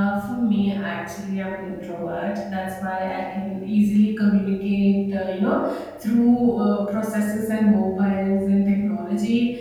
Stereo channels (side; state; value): both; identical; correlation 1.00